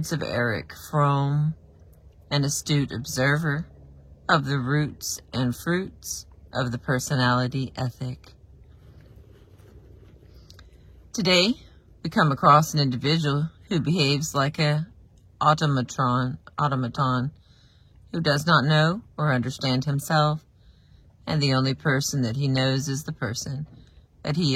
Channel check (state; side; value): identical; both; correlation 1.00